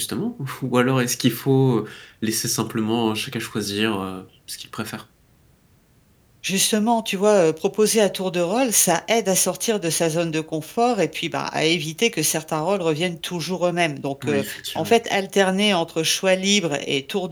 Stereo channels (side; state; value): both; identical; correlation 1.00